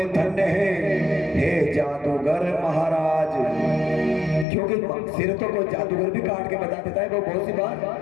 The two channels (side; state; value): right; drops out; at 4.5 s